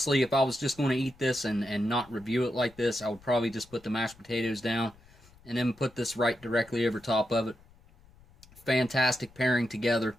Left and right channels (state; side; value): noise; left; rumble, 26 dB below the sound